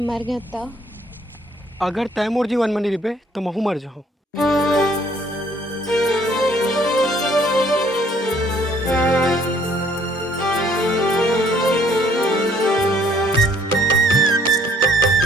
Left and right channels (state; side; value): normal; both; correlation 0.62